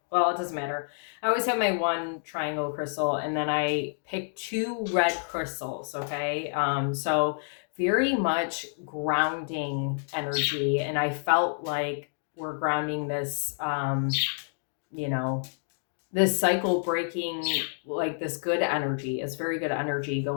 Well, it doesn't matter. I always have my one triangle crystal, and then I pick two red crystals. Okay, so very much grounding energy, and I felt like we're grounding this. This cycle breaking, like this good energy. It's very good energy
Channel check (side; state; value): right; silent; digital silence